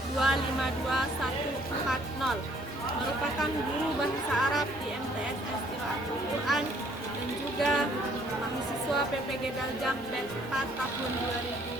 merupakan guru bahasa Arab di MTS Qiraatul Quran dan juga mahasiswa PPG Daljak batch 4 tahun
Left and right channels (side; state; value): both; normal; correlation 0.62